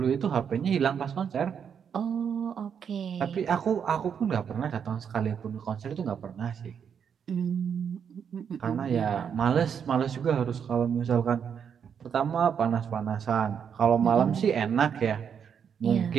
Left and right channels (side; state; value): left; quieter; 7.5 dB